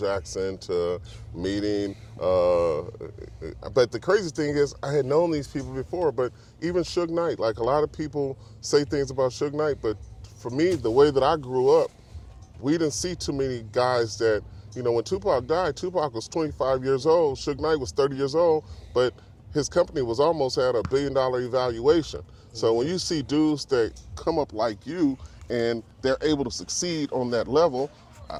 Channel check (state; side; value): identical; both; correlation 1.00